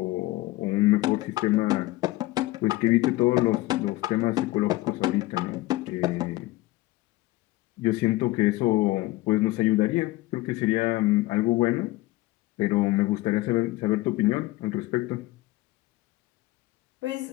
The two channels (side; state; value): right; quieter; 18.7 dB